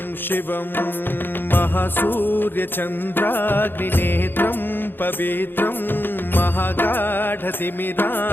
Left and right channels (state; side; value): late; right; 0.099 ms